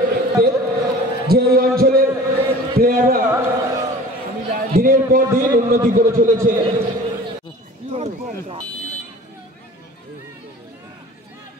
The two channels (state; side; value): normal; both; correlation 0.43